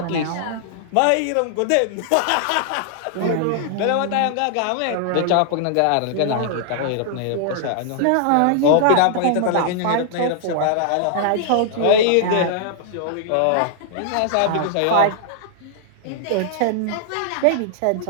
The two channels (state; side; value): different; both; correlation -0.01